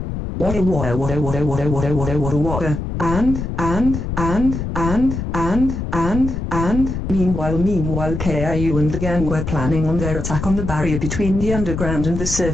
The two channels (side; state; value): left; noise; rumble, 4 dB below the sound